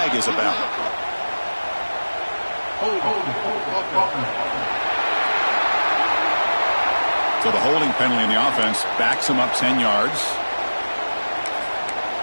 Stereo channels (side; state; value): both; inverted; correlation -1.00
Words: is about. So the holding penalty in the offense backs him up 10 yards.